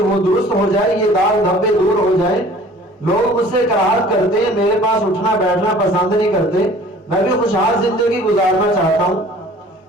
درست ہو جائے، یہ داغ دھبے دور ہو جائے، لوگ مجھ سے کراہت کرتے ہیں، میرے پاس اٹھنا بیٹھنا پسند نہیں کرتے، میں بھی خوشحال زندگی گزارنا چاہتا ہوں۔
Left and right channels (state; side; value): normal; both; correlation 0.49